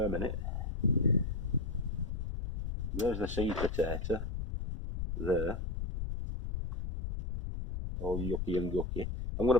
in it. There's the seed potato. There. All yucky and gucky. I'm going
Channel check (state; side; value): noise; left; rumble, 3 dB below the sound